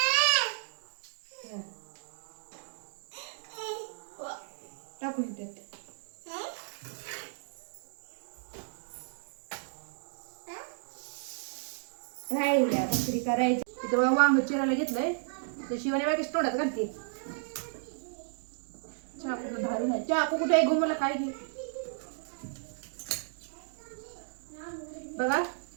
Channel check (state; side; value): silent; left; digital silence